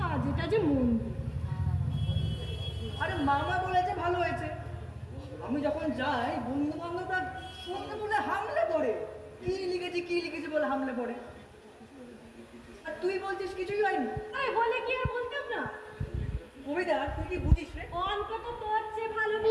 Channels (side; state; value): both; identical; correlation 1.00